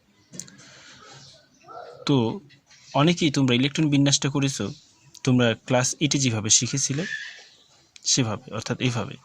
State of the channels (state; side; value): identical; both; correlation 1.00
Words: তো অনেকেই তোমরা ইলেকট্রন বিন্যাসটা করেছো, তোমরা ক্লাস 8-এ যেভাবে শিখেছিলে সেভাবে, অর্থাৎ এইভাবে,